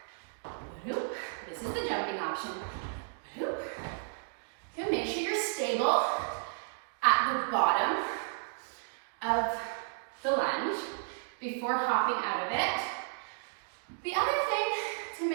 This is the jumping option. Okay, make sure you're stable at the bottom of the lunge before hopping out of it. The other thing to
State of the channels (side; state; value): left; silent; digital silence